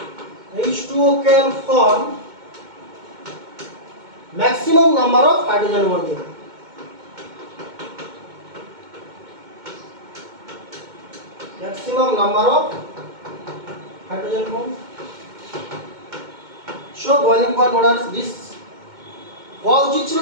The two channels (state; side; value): late; left; 2.2 ms